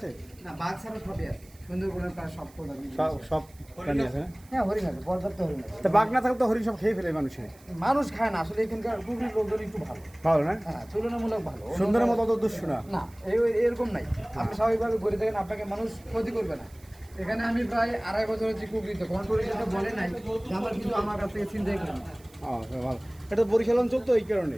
না বাঘ ছাড়া সবই আছে সুন্দরবনের প্রায় সব সব প্রাণী আছে না হ্যাঁ হরিণ আছে পর্যাপ্ত হরিণ আছে তা বাঘ না থাকলে তো হরিণ সব খেয়ে ফেলে মানুষের মানুষ খায় না আসলে এখানকার কুকুরের লোকজন একটু ভালো ভালো না হ্যাঁ তুলনামূলক ভালো সুন্দরের মতো অত দুষ্ট না না এরকম নাই আপনি স্বাভাবিকভাবে ঘুরে দেখেন আপনাকে মানুষ ক্ষতি করবে না এখানে আমি প্রায় 2.5 বছর হচ্ছে কুকুরিতে কোনো টুরিস্ট বলে নাই যে আমার কিছু আমার কাছ থেকে চিন্তাই করেন ভালো এটা বরিশাল অঞ্চল তো এই কারণে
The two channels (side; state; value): right; noise; hiss, 26 dB below the sound